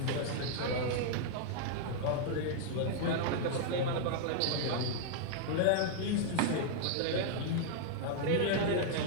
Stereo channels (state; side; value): different; both; correlation -0.01